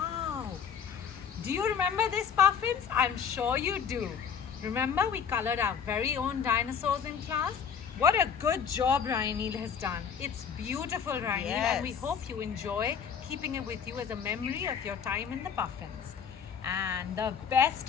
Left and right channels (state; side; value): quieter; right; 7.1 dB